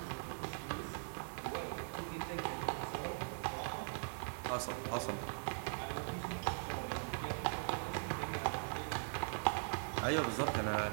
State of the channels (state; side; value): silent; left; digital silence